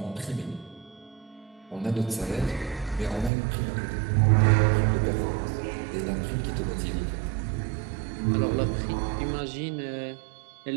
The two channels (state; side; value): drops out; left; at 3.3 s